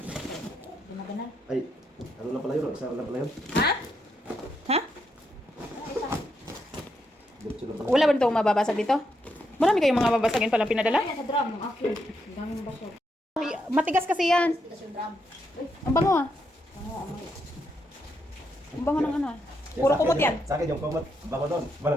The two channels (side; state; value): both; normal; correlation 0.80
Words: Gumagana. Ay, ano lang pala yun? Isa lang pala yun? Ha? Ha? Diretso lang pala. Wala ba itong mababasag dito? Marami kayong mga babasagin palang pinadala? Ay, sa drum. Ang akin. Ang daming baso. Ay, matigas kasi yan. Ito sa drum. Uy, Ang bango ah. ano, amoy. Ang bango ng ano ah. Puro kumot yan. Sa akin yung kumot. Bango doon.